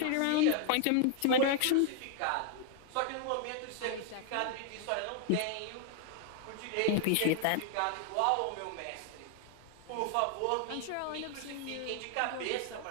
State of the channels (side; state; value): both; different; correlation 0.00